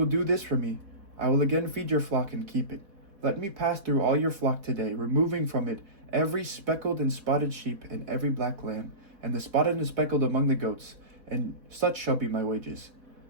do this for me, I will again feed your flock and keep it. Let me pass through all your flock today, removing from it every speckled and spotted sheep and every black lamb, and the spotted and speckled among the goats, and such shall be my wages.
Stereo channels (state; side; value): late; left; 4.1 ms